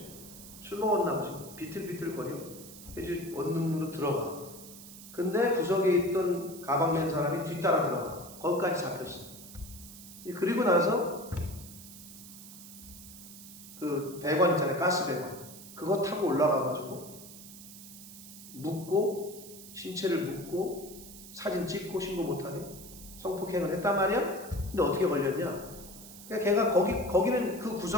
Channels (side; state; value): right; noise; hiss, 15 dB below the sound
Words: 술 먹었나 보지. 비틀비틀거려. 이제 원룸으로 들어가. 근데 구석에 있던 가방 맨 사람이 뒤따라 들어가. 거기까지 잡혔어. 그리고 나서 그 배관 있잖아요. 가스 배관. 그거 타고 올라가가지고 묻고 신체를 묻고 사진 찍고 신고 못하게 성폭행을 했단 말이야. 근데 어떻게 걸렸냐? 그러니까 걔가 거기는 그